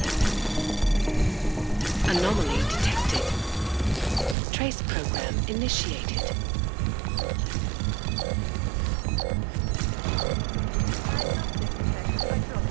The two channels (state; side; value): drops out; left; at 4.4 s